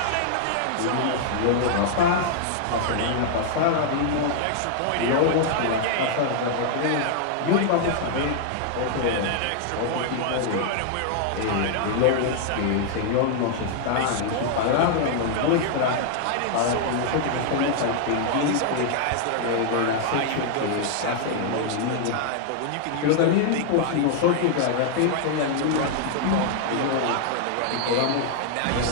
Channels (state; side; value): different; both; correlation -0.01